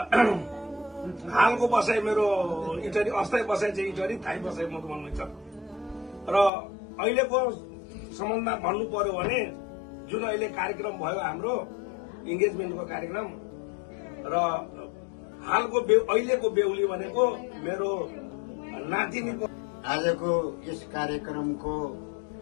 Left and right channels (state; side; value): drops out; right; at 6.5 s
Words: हालको बसाइ मेरो इटरी अस्थायी बसाइ चाहिँ इटरी थाई बसाइ मधुवनमै छ र अहिलेको सम्बन्धमा भन्नु पर्यो भने जुन अहिले कार्यक्रम भयो हाम्रो इङ्गेजमेन्टको कार्यक्रम र हालको अहिलेको बेहुली भनेको मेरो नातिनीको आजको यस कार्यक्रमको